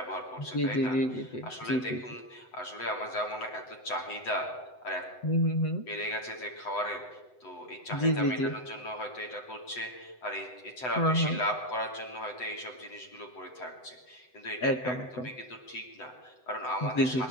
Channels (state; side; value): late; right; 7.9 ms